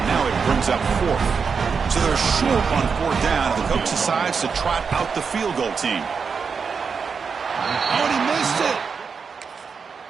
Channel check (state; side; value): quieter; left; 5.7 dB